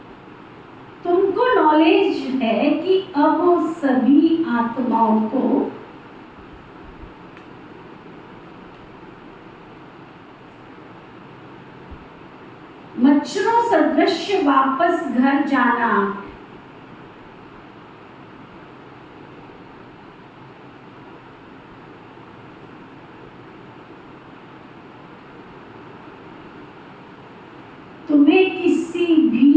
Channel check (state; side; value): identical; both; correlation 1.00